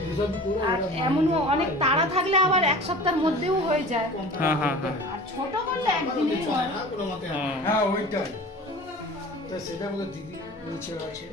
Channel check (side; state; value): both; normal; correlation 0.40